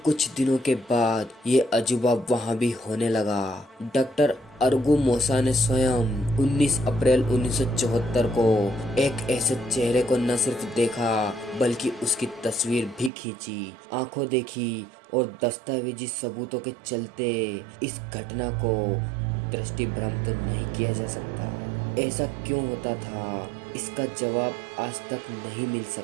कुछ दिनों के बाद ये अजूबा वहां भी होने लगा। डॉक्टर अर्गुमोसा ने स्वयं 19 अप्रैल 1974 को एक ऐसे चेहरे को न सिर्फ देखा बल्कि उसकी तस्वीर भी खींची। आंखों देखी और दस्तावेजी सबूतों के चलते इस घटना को दृष्टि भ्रम तो नहीं किया जा सकता। ऐसा क्यों होता था, इसका जवाब आज तक नहीं मिल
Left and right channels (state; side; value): drops out; left; at 13.1 s